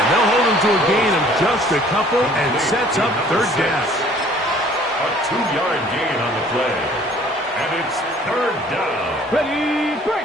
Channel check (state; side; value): normal; both; correlation 0.55